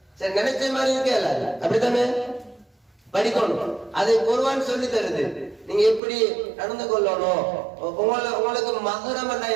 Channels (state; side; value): drops out; left; at 6.0 s